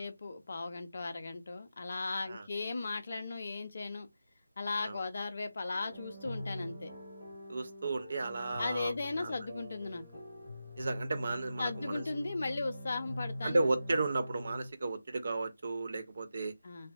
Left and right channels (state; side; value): inverted; both; correlation -0.90